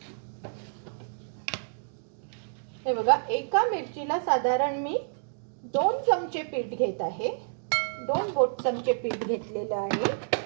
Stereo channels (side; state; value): left; silent; digital silence